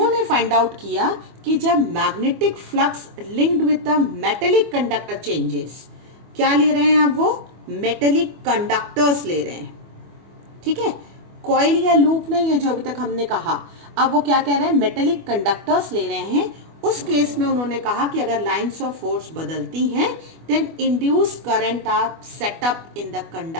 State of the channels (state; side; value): late; left; 25 ms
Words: फाइंड आउट किया कि जब magnetic flux linked with the metallic conductor changes, क्या ले रहे हैं आप, वो मेटेलिक कंडक्टर्स ले रहे हैं, ठीक है, कॉइल या लूप नहीं है जो अभी तक हमने कहा। अब वो क्या कह रहे हैं, मेटेलिक कंडक्टर्स ले रहे हैं। उस केस में उन्होंने कहा कि अगर लाइंस ऑफ फोर्स बदलती हैं then induced current are set up in the